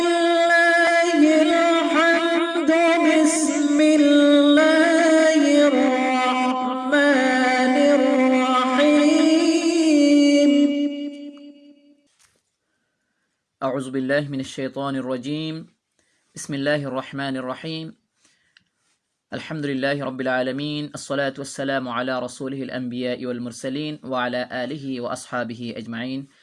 الحمد بسم الله الرحمن الرحيم أعوذ بالله من الشيطان الرجيم بسم الله الرحمن الرحيم الحمد لله رب العالمين الصلاة والسلام على رسوله الأنبياء والمرسلين وعلى آله وأصحابه أجمعين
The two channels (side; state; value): both; identical; correlation 1.00